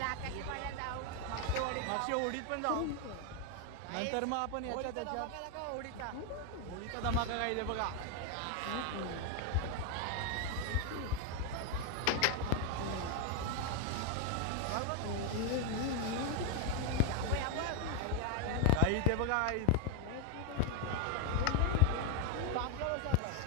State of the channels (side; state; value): both; different; correlation 0.01